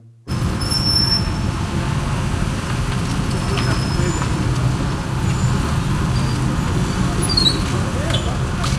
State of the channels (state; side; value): identical; both; correlation 1.00